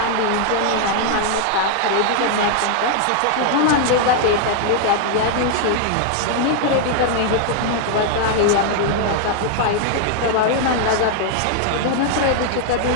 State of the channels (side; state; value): both; different; correlation 0.00